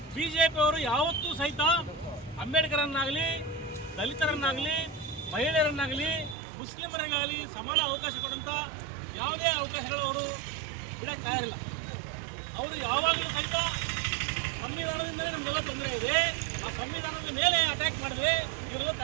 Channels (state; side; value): drops out; left; at 6.4 s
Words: ಬಿಜೆಪಿ ಅವರು ಯಾವತ್ತೂ ಸಹಿತ ಅಂಬೇಡ್ಕರನ್ನಾಗಲಿ, ದಲಿತರನ್ನಾಗಲಿ, ಮಹಿಳೆಯರನ್ನಾಗಲಿ, ಮುಸ್ಲಿಮರಿಗಾಗಲಿ ಸಮಾನ ಅವಕಾಶ ಕೊಡುವಂಥ ಯಾವುದೇ ಅವಕಾಶಗಳು ಅವರು ಬಿಡಕ್ಕೆ ತಯಾರಿಲ್ಲ. ಅವರು ಯಾವಾಗಲೂ ಸಹಿತ ಸಂವಿಧಾನದಿಂದಲೇ ನಮಗೆಲ್ಲ ತೊಂದರೆ ಇದೆ, ಆ ಸಂವಿಧಾನದ ಮೇಲೆ ಅಟ್ಯಾಕ್ ಮಾಡಿದ್ರೆ ಇವರೆಲ್ಲ